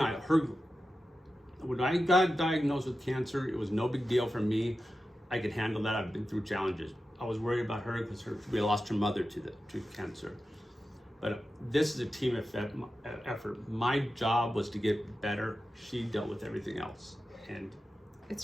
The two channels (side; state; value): both; normal; correlation 0.92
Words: I, when I got diagnosed with cancer, it was no big deal for me. I could handle that. I've been through challenges. I was worried about her because we lost her mother to cancer. But this is a team effort. My job was to get better. She dealt with everything else. And it's